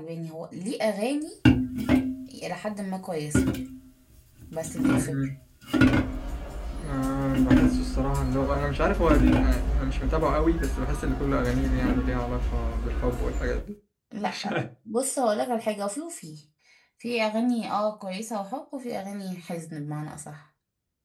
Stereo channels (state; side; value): identical; both; correlation 1.00